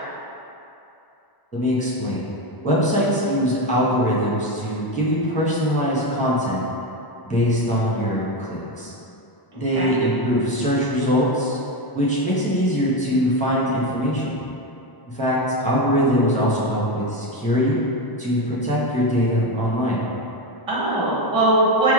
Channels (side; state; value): right; late; 1.0 ms